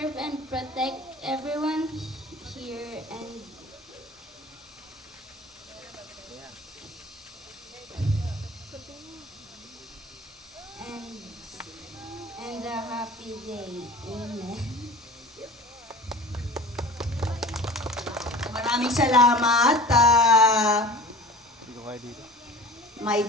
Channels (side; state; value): both; normal; correlation 0.40